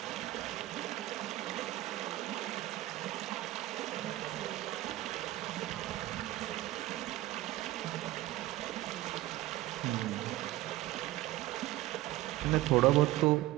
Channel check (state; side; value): quieter; left; 16.6 dB